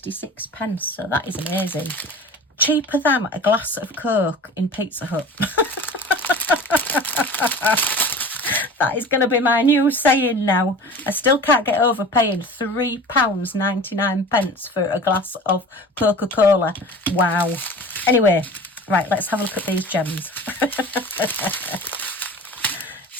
so that is amazing. Cheaper than a glass of Coke in Pizza Hut. That is going to be my new saying now. I still can't get over paying £3.99 for a glass of Coca-Cola. Wow. Anyway, right, let's have a look at these gems.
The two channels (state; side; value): normal; both; correlation 0.39